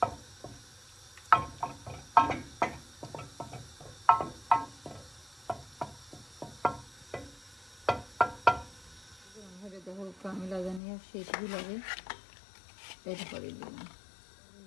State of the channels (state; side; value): drops out; right; at 10.8 s